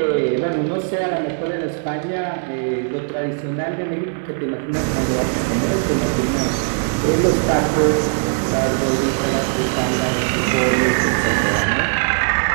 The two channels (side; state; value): left; silent; 58 dB below the other